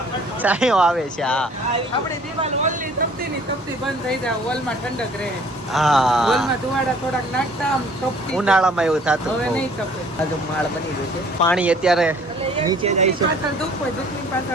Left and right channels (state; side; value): normal; both; correlation 0.55